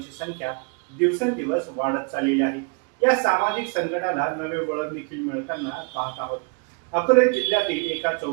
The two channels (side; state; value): left; quieter; 36.5 dB